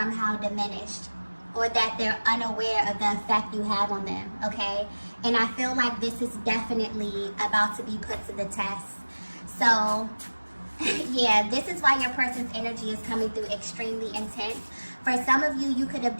diminished or that they're unaware of the effect you have on them, okay? And I feel like this is definitely about to be put to the test. So, yeah, this is why your person's energy is coming through extremely intense. For some of you, you could have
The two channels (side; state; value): both; inverted; correlation -1.00